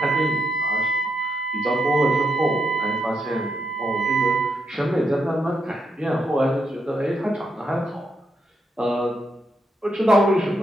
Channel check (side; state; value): both; normal; correlation 0.81